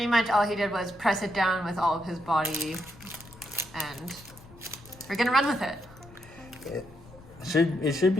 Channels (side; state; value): left; noise; rumble, 22 dB below the sound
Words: much all he did was press it down with all of his body, and we're gonna run with it. It should